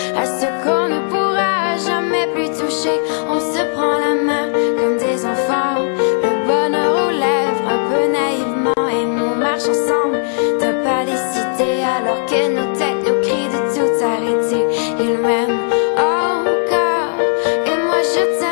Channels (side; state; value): right; silent; digital silence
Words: à ce qu'on ne pourra jamais plus toucher. On se prend la main comme des enfants, le bonheur aux lèvres un peu naïvement, et nous marche ensemble d'un pas décidé alors que nos têtes nous crient de tout arrêter. Il m'aime encore et moi je